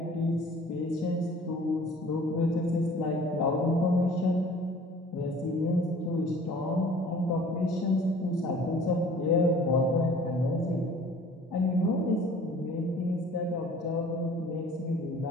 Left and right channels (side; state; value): both; normal; correlation 0.49